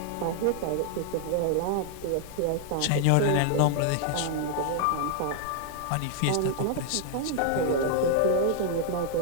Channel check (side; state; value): both; different; correlation 0.00